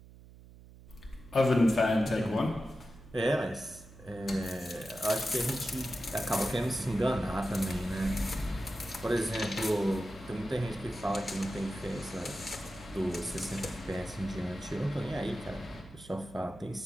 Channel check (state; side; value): noise; right; hum, 20 dB below the sound